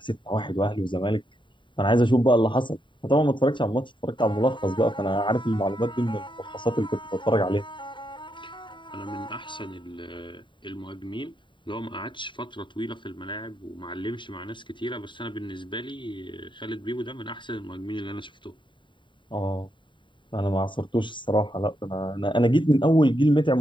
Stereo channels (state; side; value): late; right; 0.23 ms